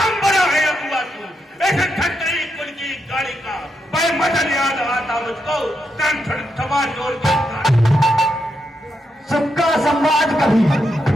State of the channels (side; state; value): both; normal; correlation 0.82